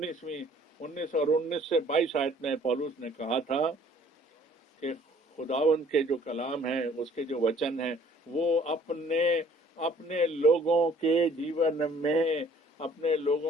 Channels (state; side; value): normal; both; correlation 0.57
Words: और 19 से 22 आयत में पौलुस ने कहा था कि खुदावंद के जो कलाम है, उसके जो वचन है, वो अपने अपने लोगों के जीवन में, अपने